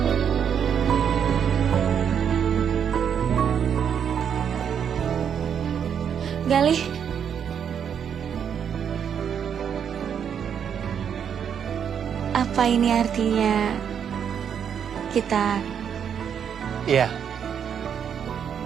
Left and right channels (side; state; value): left; quieter; 8.0 dB